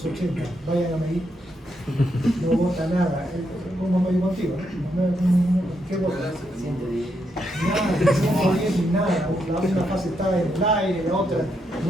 vayan a medir. No bota nada, como me digo contigo, ¿qué bota? Nada, no bien, nada, una fase está en el aire, la otra,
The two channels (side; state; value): both; normal; correlation 0.80